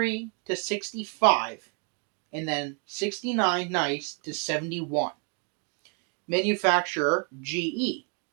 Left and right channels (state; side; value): quieter; left; 38.2 dB